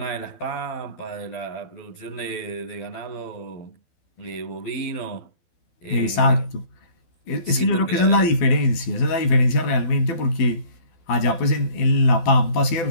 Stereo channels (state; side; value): late; right; 12 ms